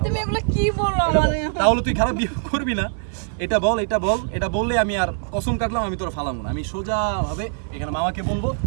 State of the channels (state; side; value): silent; left; digital silence